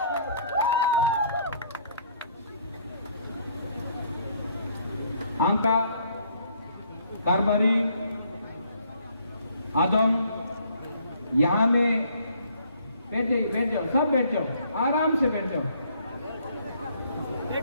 आंका कारबारी आदम यहाँ में बैठ जाओ सब बैठ जाओ आराम से बैठ जाओ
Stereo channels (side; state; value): both; inverted; correlation -0.63